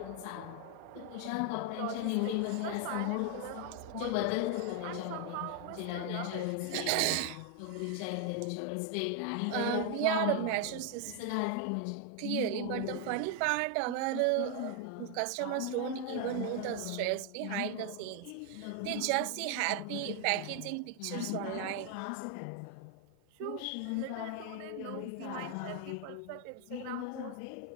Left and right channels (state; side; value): different; both; correlation 0.01